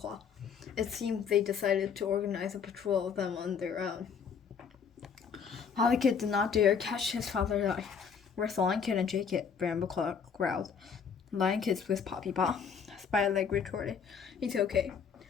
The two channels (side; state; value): right; quieter; 6.6 dB